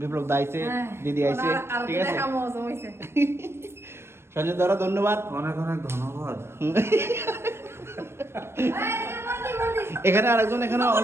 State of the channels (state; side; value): late; left; 0.12 ms